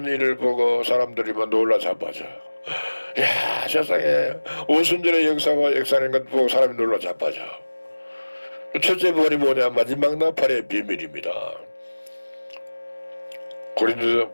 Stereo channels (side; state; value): both; inverted; correlation -1.00